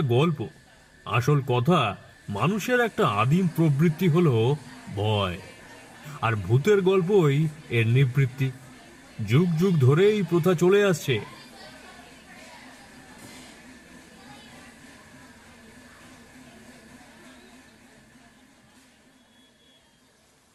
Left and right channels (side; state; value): both; identical; correlation 1.00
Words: গল্প। আসল কথা, মানুষের একটা আদিম প্রবৃত্তি হলো ভয়, আর ভূতের গল্পই এর নিবৃত্তি। যুগ যুগ ধরে এই প্রথা চলে আসছে।